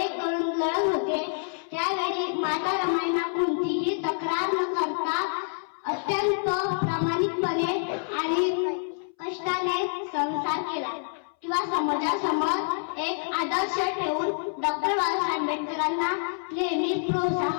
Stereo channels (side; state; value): right; silent; 60 dB below the other